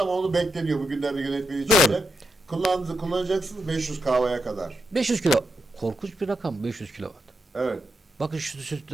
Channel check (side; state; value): both; normal; correlation 0.84